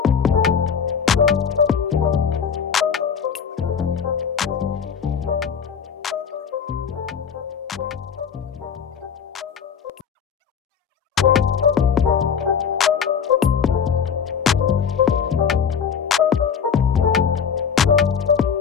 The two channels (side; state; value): right; quieter; 7.0 dB